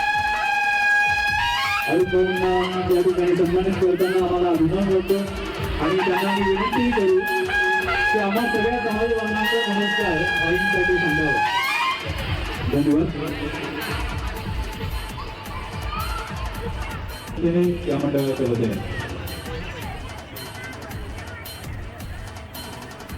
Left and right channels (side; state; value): both; identical; correlation 1.00